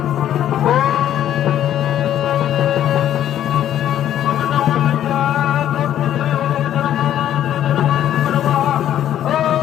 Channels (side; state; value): right; quieter; 11.2 dB